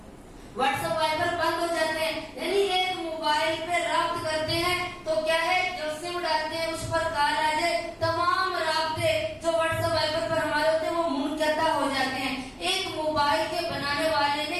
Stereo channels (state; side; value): identical; both; correlation 1.00